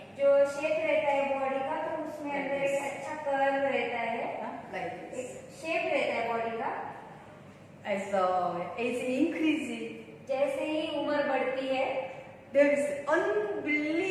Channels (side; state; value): both; identical; correlation 1.00